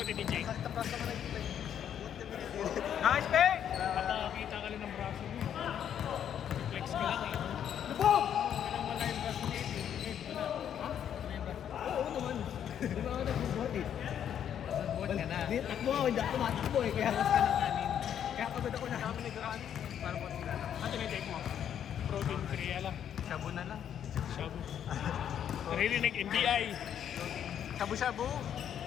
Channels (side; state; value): right; quieter; 9.4 dB